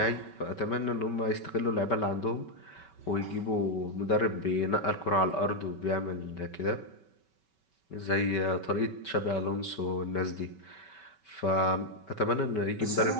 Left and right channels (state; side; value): late; right; 5.3 ms